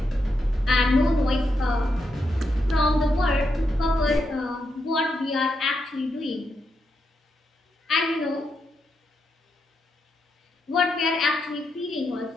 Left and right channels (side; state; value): both; normal; correlation 0.83